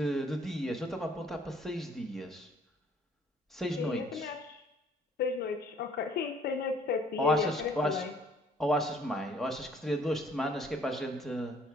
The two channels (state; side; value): normal; both; correlation 0.59